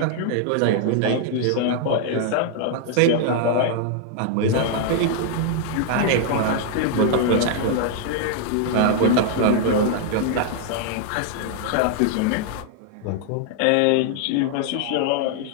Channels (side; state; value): both; different; correlation 0.00